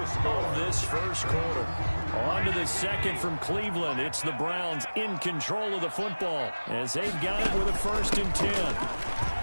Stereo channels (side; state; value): both; inverted; correlation -1.00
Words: of this first quarter. On to the 2nd from Cleveland. It's the Browns in control of the football as they've got it with a 1st and 10.